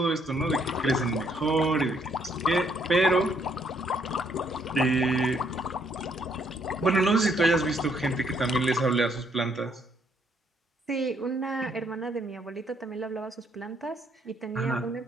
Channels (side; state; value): both; normal; correlation 0.69